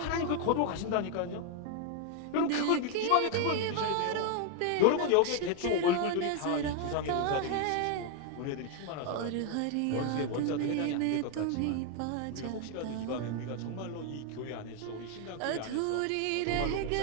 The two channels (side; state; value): both; different; correlation 0.00